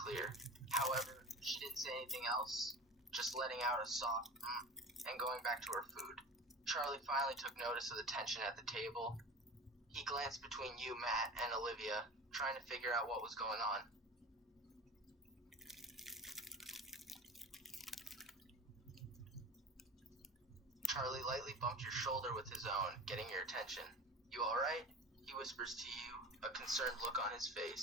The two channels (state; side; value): normal; both; correlation 0.34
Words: However, she didn't say anything else, just letting out a soft and going back to her food. Charlie finally took notice of the tension at the table. He glanced between you, Matt, and Olivia, trying to figure out what was going on. Charlie lightly bumped your shoulder with his own, getting your attention. You alright? He whispers to you, a concerned look on his